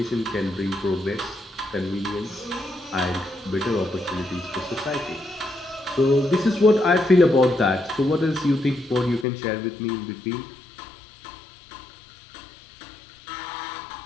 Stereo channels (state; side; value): drops out; right; at 9.2 s